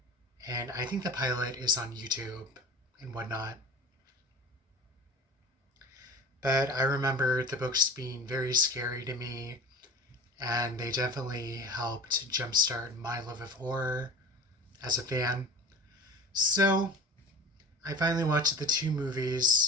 And I think the pilot is on YouTube and whatnot. But I remember the books being very scary to me, and they definitely helped jumpstart my love of horror as a fan. So I finally watched the two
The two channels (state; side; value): normal; both; correlation 0.36